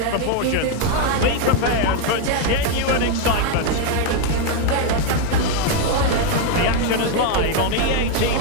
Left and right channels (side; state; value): both; different; correlation 0.01